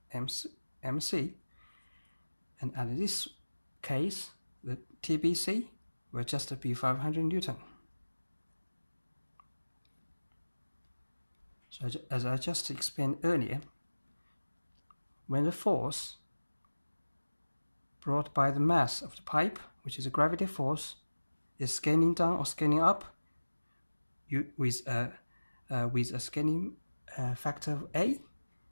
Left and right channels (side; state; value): both; inverted; correlation -1.00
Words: MC, and in this case, the TBC will just be 500 Newton. So as I just explained earlier, when the force brought by the mass of the pipe, which is a gravity force, is scaling down or scaling up with a scaling factor of A,